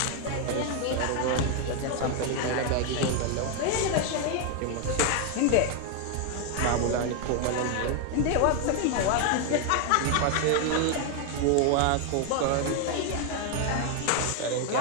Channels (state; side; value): different; both; correlation 0.01